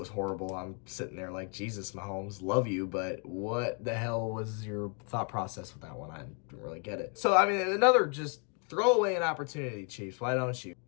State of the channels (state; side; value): quieter; right; 37.6 dB